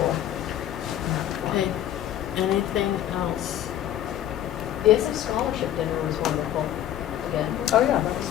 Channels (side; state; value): right; quieter; 11.6 dB